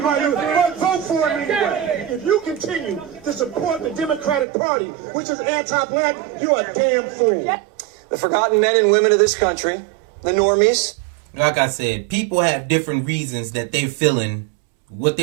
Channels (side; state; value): left; drops out; at 4.5 s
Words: might lose. But vote for him anyway. If you continue to support the Democratic Party, which is anti-black, you're a damn fool. The forgotten men and women of this country, the normies. Like I said, people have different reasons that they're feeling what